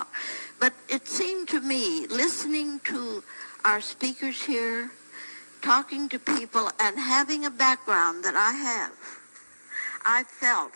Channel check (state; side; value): inverted; both; correlation -1.00